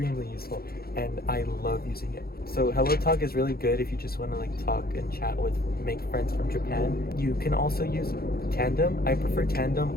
useful, and I love using it. So Hello Talk is really good if you just want to like talk and chat with, make friends from Japan. You can also use Tandem. I prefer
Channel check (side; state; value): right; late; 0.44 ms